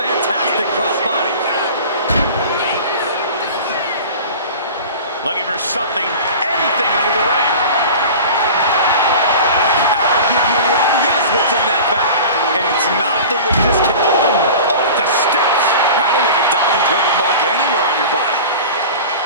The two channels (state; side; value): inverted; both; correlation -0.36